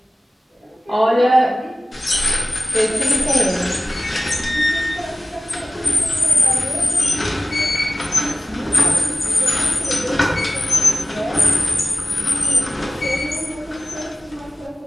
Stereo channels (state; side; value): normal; both; correlation 0.97